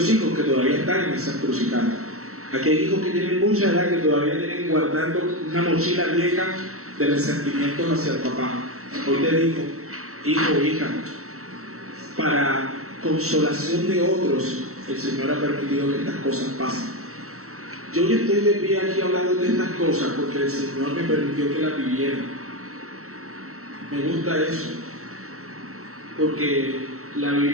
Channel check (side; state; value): left; late; 0.64 ms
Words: hijos que todavía están en esa encrucijada. Aquí hay hijos que tienen mucha edad que todavía tienen guardando una mochila vieja de resentimientos hacia el papá. Hoy te digo, hijo o hija, para consolación de otros, el Señor ha permitido que estas cosas pasen. Yo ya estoy de pie aquí hablando de estas cosas porque el Señor me permitió que las viviera. Me gusta eso, porque la